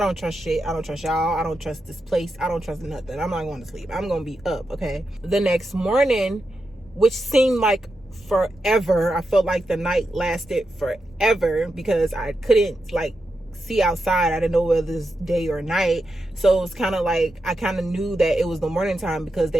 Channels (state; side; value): normal; both; correlation 0.87